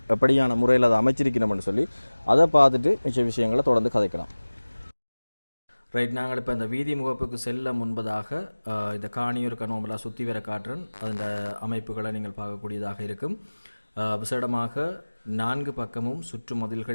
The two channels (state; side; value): inverted; both; correlation -1.00